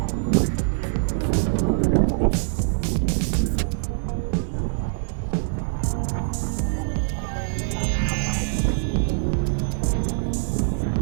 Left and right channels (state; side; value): silent; left; 63 dB below the other